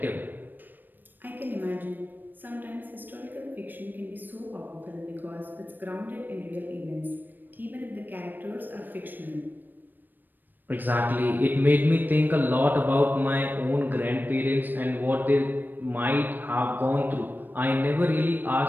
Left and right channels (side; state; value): left; late; 0.091 ms